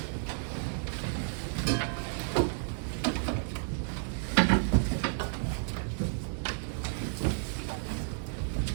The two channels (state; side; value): silent; left; digital silence